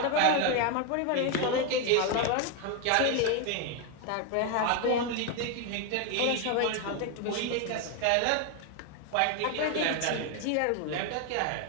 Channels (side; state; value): both; different; correlation 0.01